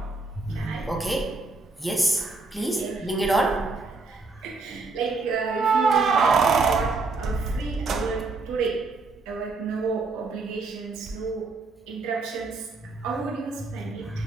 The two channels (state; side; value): quieter; left; 3.8 dB